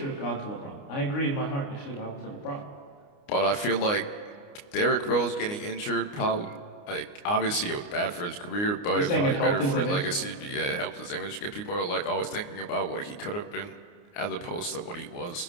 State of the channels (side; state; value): right; late; 29 ms